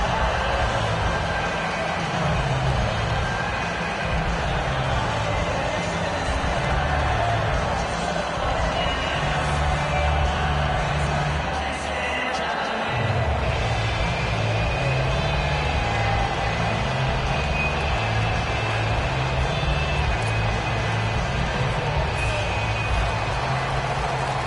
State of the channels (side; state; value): both; identical; correlation 1.00